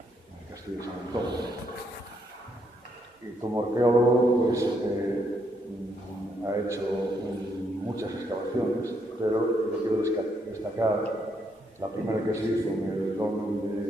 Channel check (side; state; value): both; normal; correlation 0.75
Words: en el Castillo de San Antonio. Y como arqueólogo, pues, ha hecho muchas excavaciones, pero yo quiero destacar la primera que se hizo en el